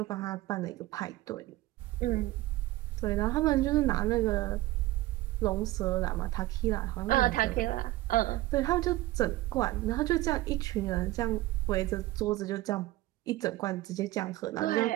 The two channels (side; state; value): left; quieter; 17.6 dB